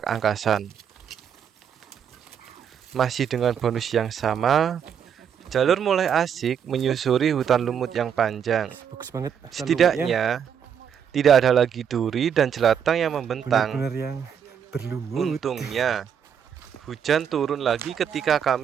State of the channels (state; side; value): quieter; left; 8.0 dB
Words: Angkasan. Masih dengan bonus yang sama, jalur mulai asik menyusuri hutan lumut yang panjang. Bagus banget. Setidaknya, tidak ada lagi duri dan jelatang yang membentang. Benar-benar yang berlumut. Untungnya, hujan turun lagi ketika